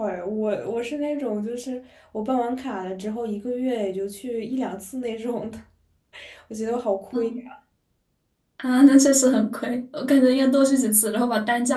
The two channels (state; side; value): identical; both; correlation 1.00